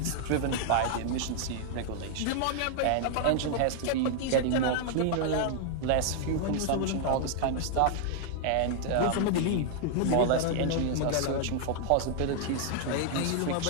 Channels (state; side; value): different; both; correlation 0.00